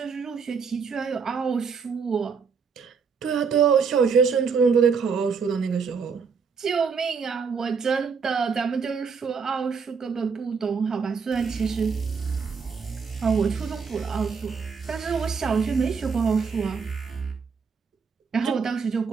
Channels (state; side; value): quieter; left; 5.7 dB